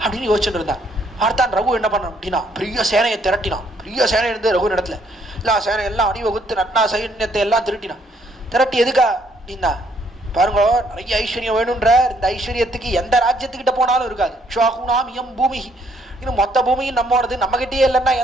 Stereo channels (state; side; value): normal; both; correlation 0.68